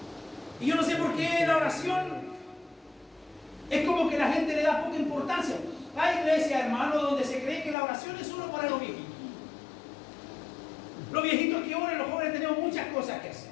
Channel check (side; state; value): right; drops out; at 7.8 s